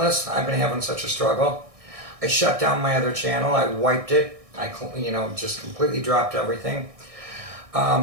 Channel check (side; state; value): left; late; 1.6 ms